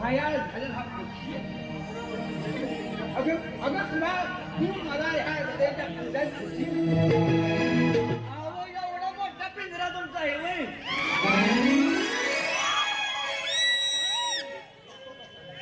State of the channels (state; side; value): identical; both; correlation 1.00